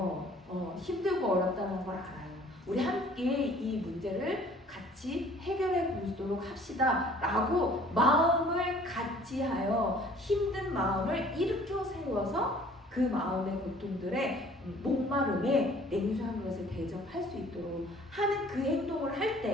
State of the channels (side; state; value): both; normal; correlation 0.53